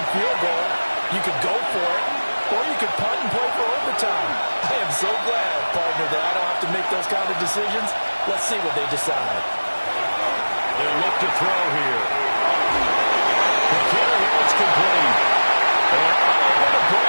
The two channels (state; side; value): inverted; both; correlation -1.00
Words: field goal, you could go for it, or you could punt and play for overtime. I am so glad, partner, that I don't have to make those kind of decisions. Let's see what they decide. They'll look to throw here. McKinnon, it's complete. And unable to